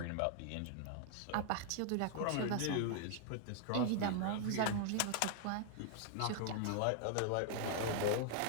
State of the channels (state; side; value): different; both; correlation 0.00